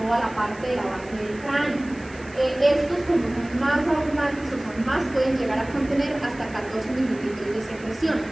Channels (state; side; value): noise; right; hiss, 24 dB below the sound